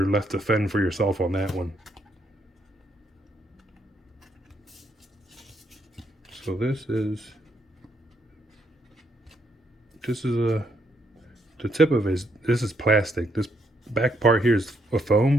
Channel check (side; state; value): both; normal; correlation 0.75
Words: left to fend for yourself on that one. So this is the tip of it. This is plastic. This back part here is a